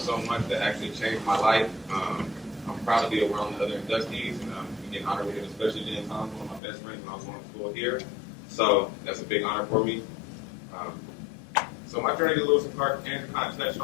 much that actually changed my life. I'm proud to be around the other inductees and getting honored with it, especially Jen Thompson, one of my best friends when I was going to school here. So that's a big honor for me. So my journey to Lewis and Clark, Andrew kind of touched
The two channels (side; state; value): right; drops out; at 6.6 s